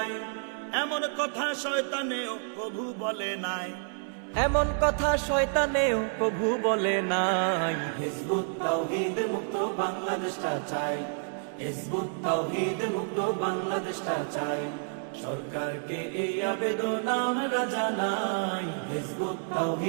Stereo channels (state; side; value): silent; left; digital silence